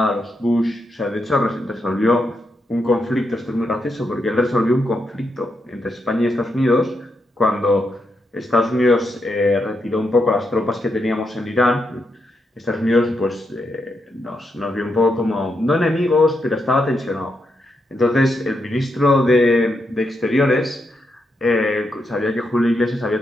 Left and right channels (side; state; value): both; normal; correlation 0.82